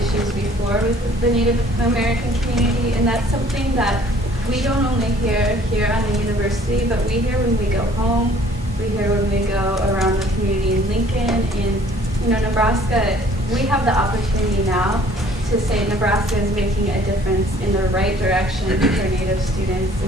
before with the Native American community, and that's something that we don't only hear here on the university, but we hear when we go home, we hear when we go around the community in Lincoln, in Nebraska. We have the opportunity now to say Nebraska is making a difference in the right direction for Native students,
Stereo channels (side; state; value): both; normal; correlation 0.56